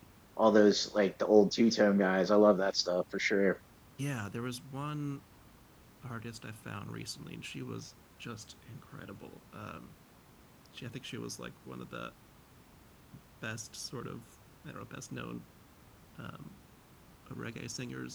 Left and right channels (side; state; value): both; identical; correlation 1.00